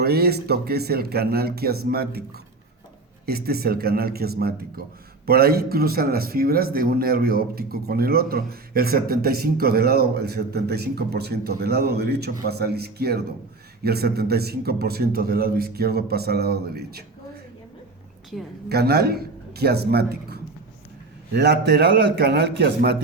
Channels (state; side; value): quieter; left; 3.5 dB